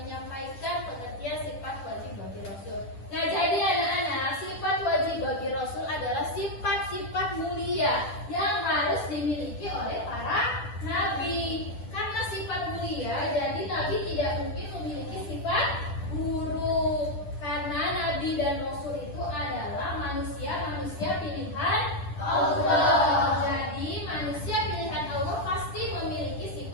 pengertian sifat wajib bagi Rasul. Nah, jadi anak-anak, sifat wajib bagi Rasul adalah sifat-sifat mulia yang harus dimiliki oleh para nabi. Karena sifat mulia, jadi nabi tidak mungkin memiliki sifat buruk. Karena nabi dan rasul itu adalah manusia-manusia pilihan Allah. Jadi manusia pilihan Allah pasti memiliki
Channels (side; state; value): right; late; 10 ms